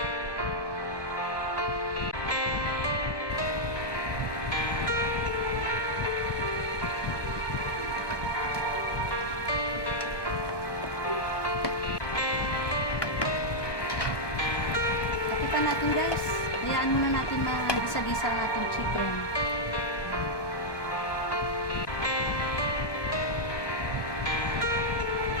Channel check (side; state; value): right; late; 1.2 ms